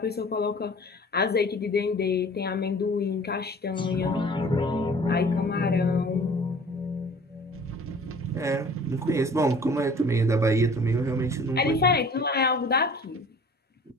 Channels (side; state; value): both; normal; correlation 0.48